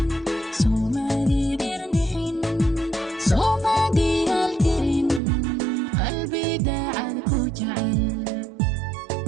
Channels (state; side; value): drops out; left; at 5.2 s